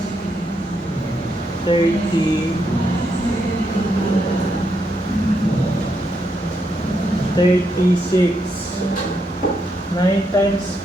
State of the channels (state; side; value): normal; both; correlation 0.79